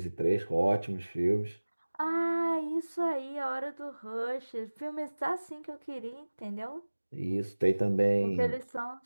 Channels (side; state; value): both; inverted; correlation -1.00